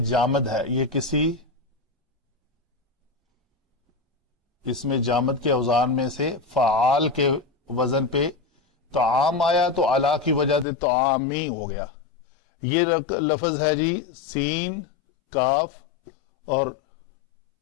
جامد ہے، یہ کسی اس میں جامد کے اوزان میں سے فعال کے وزن پہ طعام آیا تو علا کی وجہ سے طعامی ہو گیا. یہ لفظ ہے جی سین کاف اور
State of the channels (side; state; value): right; drops out; at 10.7 s